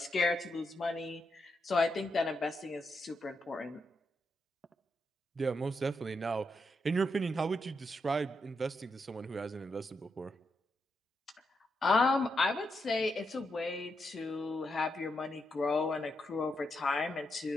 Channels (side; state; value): both; normal; correlation 0.83